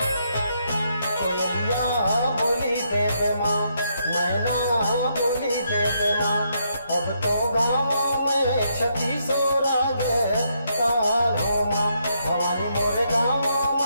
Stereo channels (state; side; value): inverted; both; correlation -0.76